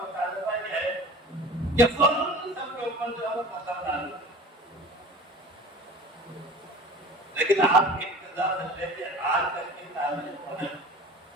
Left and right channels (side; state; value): both; normal; correlation 0.41